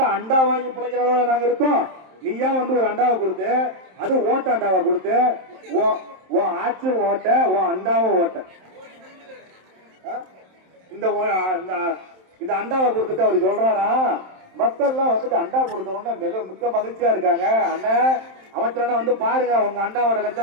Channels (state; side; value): late; left; 27 ms